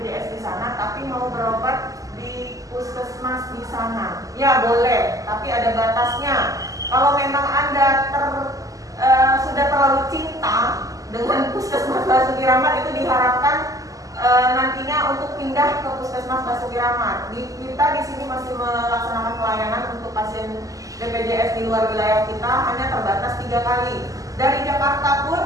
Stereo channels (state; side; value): late; left; 0.17 ms